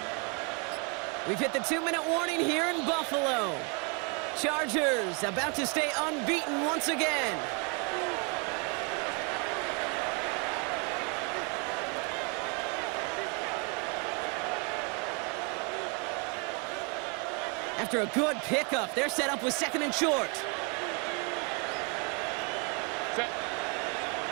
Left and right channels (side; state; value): left; quieter; 34.4 dB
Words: We've hit the 2-minute warning here in Buffalo. Chargers about to stay unbeaten once again. After a good pickup, they're set up with second and short.